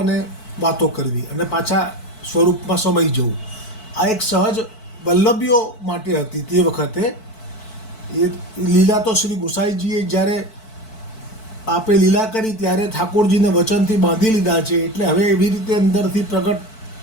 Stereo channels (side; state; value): right; late; 4.5 ms